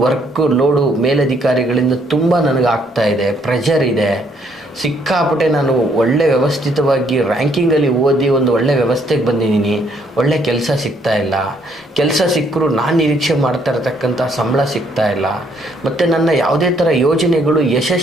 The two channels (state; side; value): normal; both; correlation 0.68